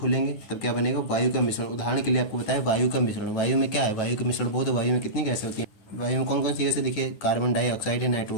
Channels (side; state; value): right; late; 9.3 ms